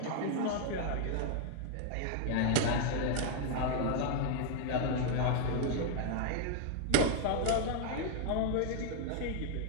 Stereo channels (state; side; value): different; both; correlation 0.01